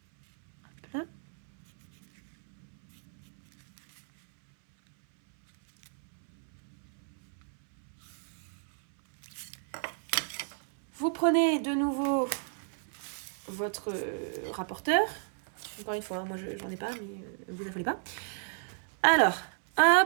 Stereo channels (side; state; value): left; silent; 56 dB below the other